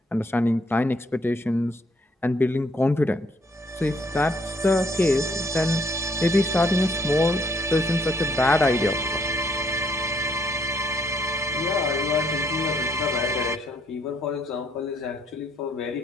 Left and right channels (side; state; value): both; normal; correlation 0.68